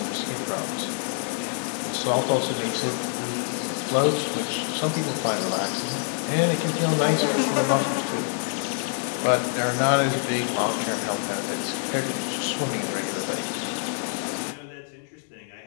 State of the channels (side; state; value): right; silent; 57 dB below the other